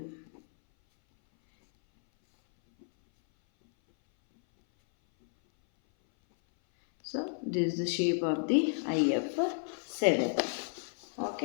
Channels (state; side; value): silent; right; 57 dB below the other